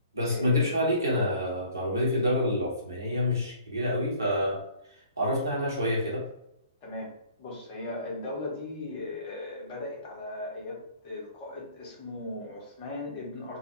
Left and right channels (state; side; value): inverted; both; correlation -0.54